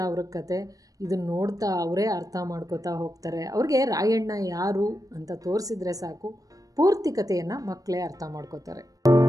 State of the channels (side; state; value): left; late; 0.17 ms